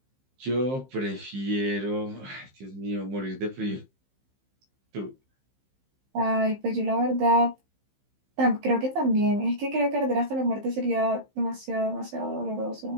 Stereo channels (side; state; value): left; late; 15 ms